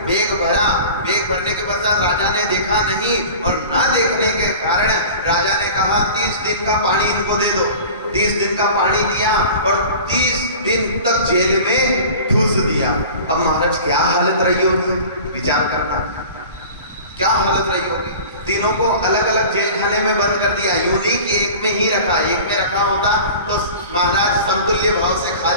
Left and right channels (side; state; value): both; inverted; correlation -0.39